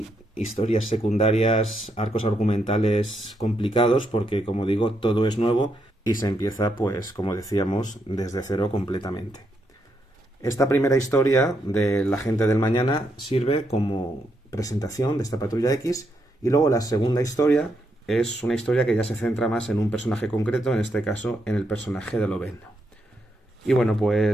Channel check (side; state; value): both; normal; correlation 0.79